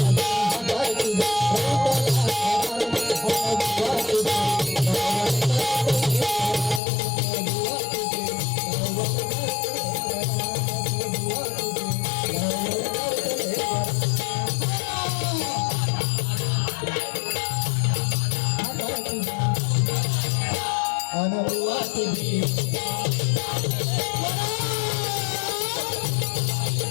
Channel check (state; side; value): drops out; right; at 6.8 s